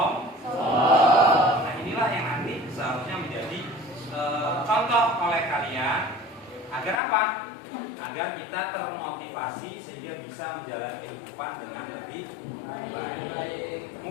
Nah, inilah yang nanti seharusnya menjadi contoh oleh kalian agar apa? Agar kita termotivasi sehingga bisa menjalani kehidupan dengan lebih baik.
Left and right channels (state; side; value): drops out; right; at 7.0 s